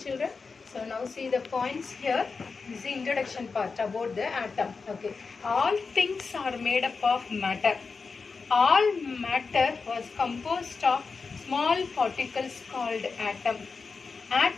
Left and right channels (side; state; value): right; quieter; 4.7 dB